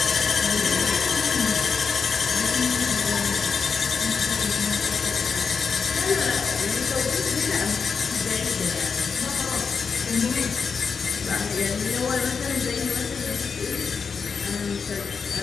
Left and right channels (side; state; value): right; quieter; 5.7 dB